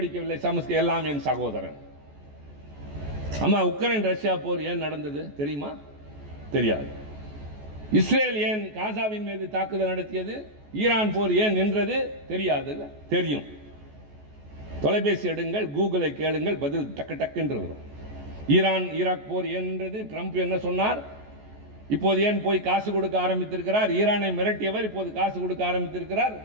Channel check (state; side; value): late; left; 14 ms